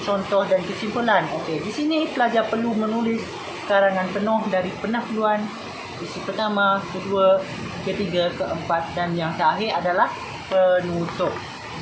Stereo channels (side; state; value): both; identical; correlation 1.00